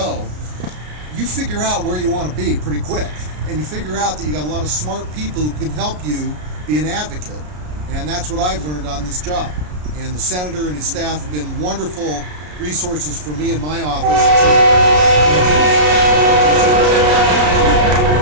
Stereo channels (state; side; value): late; left; 33 ms